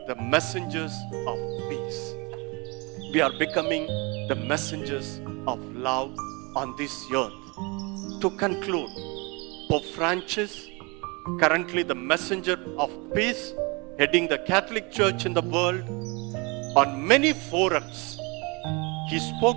the messengers of peace. We are becoming the messengers of love on this earth. To conclude, Pope Francis, currently the messenger of peace, heading the Catholic Church in the world, on many forums, he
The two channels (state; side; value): quieter; left; 28.6 dB